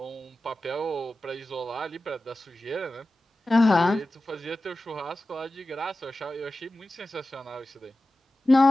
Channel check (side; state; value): both; normal; correlation 0.95